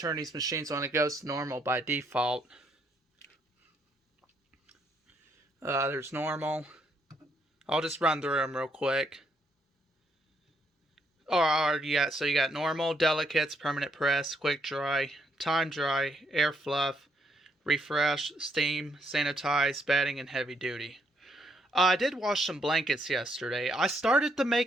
these machines on, it goes to normal by default. There's normal. I'll just run through them real quick. Yeah, so you got normal, delicates, permanent press, quick dry, time dry, air fluff, refresh, steam, sanitize, bedding, and heavy duty. I did wash some blankets yesterday. I started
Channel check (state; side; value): normal; both; correlation 0.73